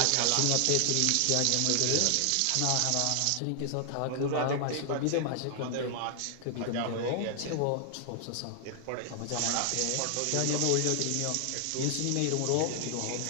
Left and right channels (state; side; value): different; both; correlation 0.00